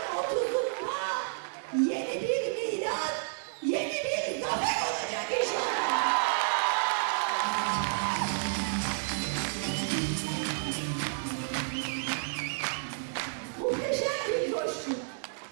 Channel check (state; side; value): silent; left; digital silence